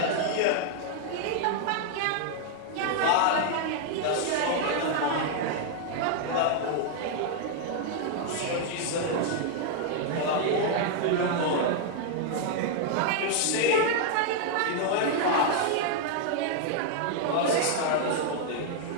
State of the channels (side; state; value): both; different; correlation 0.00